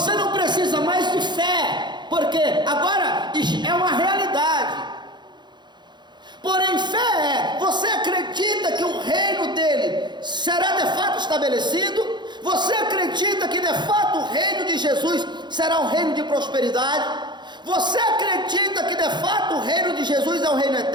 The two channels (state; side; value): late; left; 0.21 ms